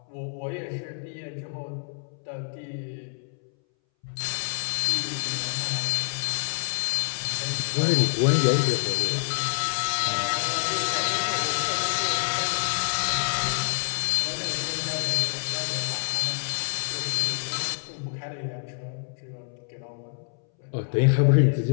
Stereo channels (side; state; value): right; silent; 60 dB below the other